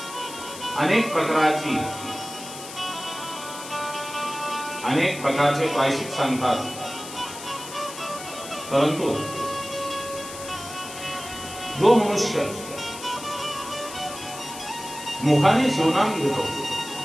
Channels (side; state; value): left; noise; hiss, 12 dB below the sound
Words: अनेक प्रकारचे प्रायश्चित सांगतात, परंतु जो मनुष्य मुखाने शिवनाम घेतो